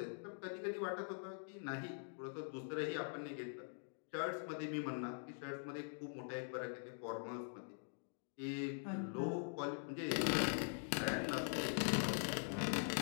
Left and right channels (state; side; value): silent; right; digital silence